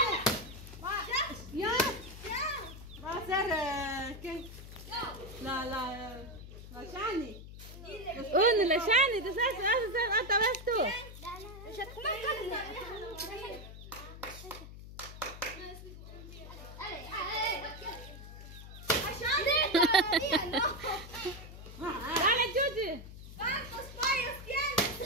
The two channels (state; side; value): noise; left; hum, 13 dB below the sound